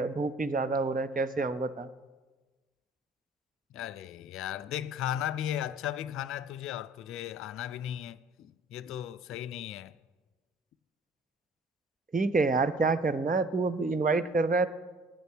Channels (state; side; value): normal; both; correlation 0.52